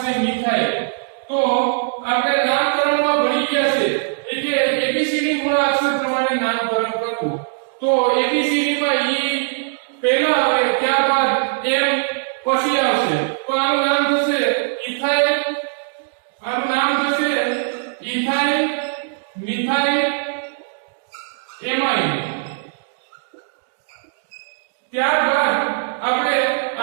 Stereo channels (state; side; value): silent; left; digital silence